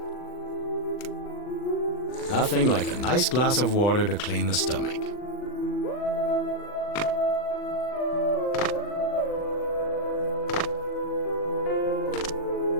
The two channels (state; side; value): late; right; 40 ms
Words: Nothing like a nice glass of water to clean the stomach.